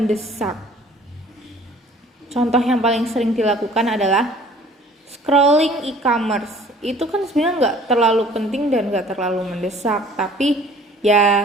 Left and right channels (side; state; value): both; normal; correlation 0.52